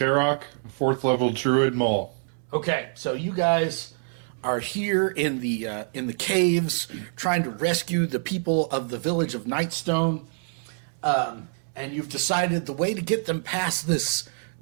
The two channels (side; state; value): left; silent; digital silence